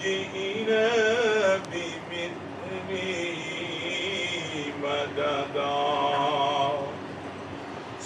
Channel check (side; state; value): both; identical; correlation 1.00